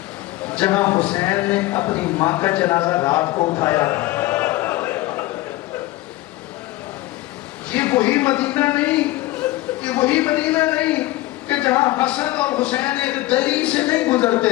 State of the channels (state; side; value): quieter; right; 17.9 dB